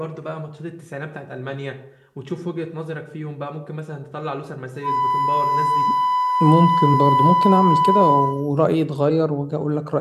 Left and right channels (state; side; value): identical; both; correlation 1.00